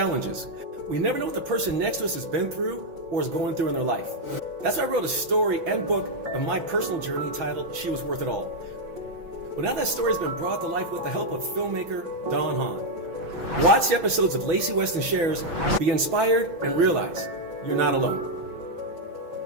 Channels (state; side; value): late; left; 6.0 ms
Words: We never know what the person next to us has been through or is going through in their life. That's why I wrote a story and book of my personal journey titled She Was Worth It All. Well, now that story has been brought to life with the help of filmmaker Don Hahn. Watch the episodes of Lacy Weston Shares, be inspired, and realize you're not alone.